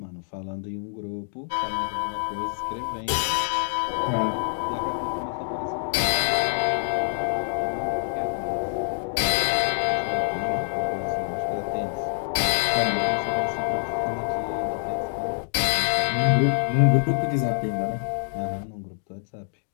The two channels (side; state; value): right; silent; digital silence